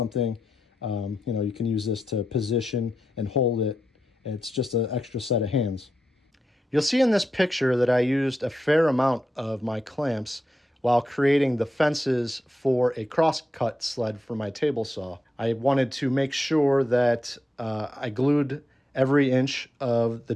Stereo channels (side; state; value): both; normal; correlation 0.87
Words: you can use this to position and hold it. It's just an extra set of hands. You'll see in this picture that I used a fair amount of my clamps while creating the fences for a crosscut sled for my table saw. I wanted to make sure that I glued every inch of the